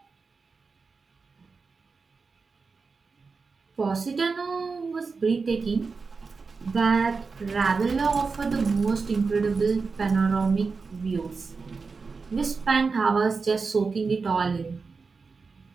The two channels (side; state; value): left; quieter; 4.6 dB